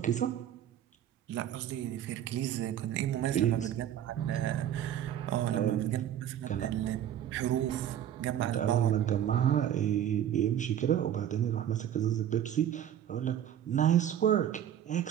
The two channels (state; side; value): quieter; left; 10.5 dB